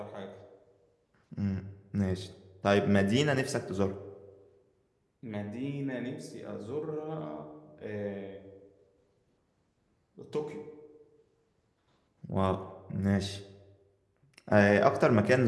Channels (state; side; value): identical; both; correlation 1.00